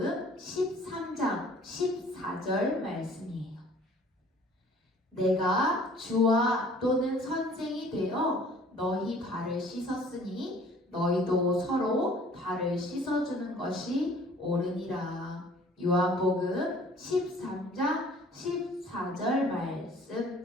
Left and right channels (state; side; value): normal; both; correlation 0.53